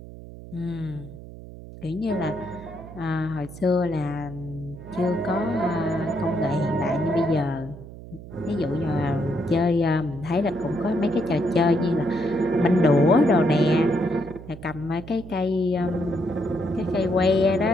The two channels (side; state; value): right; noise; hum, 15 dB below the sound